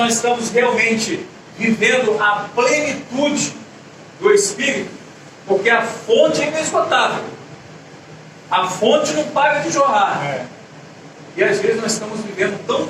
estamos realmente vivendo a plenitude do Espírito? Porque a fonte é inesgotável. A fonte não para de jorrar. E às vezes nós estamos vivendo tão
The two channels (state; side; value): identical; both; correlation 1.00